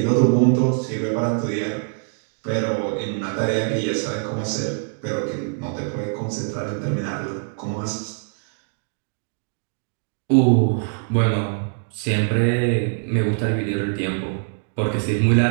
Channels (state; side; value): silent; left; digital silence